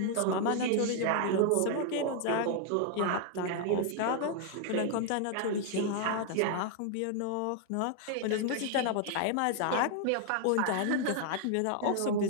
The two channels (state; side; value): different; both; correlation 0.00